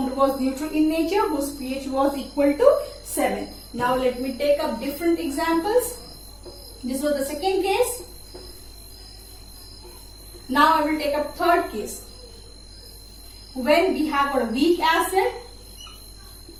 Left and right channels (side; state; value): both; identical; correlation 1.00